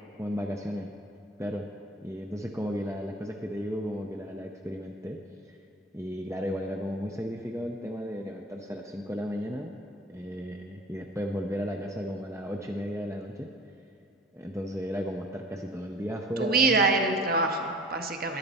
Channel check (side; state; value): both; normal; correlation 0.44